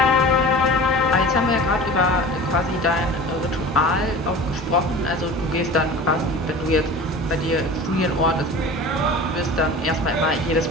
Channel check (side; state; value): both; normal; correlation 0.37